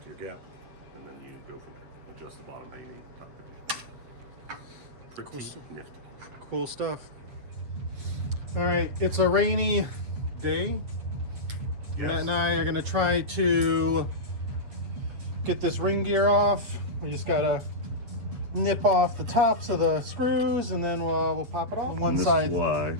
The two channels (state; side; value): late; left; 7.7 ms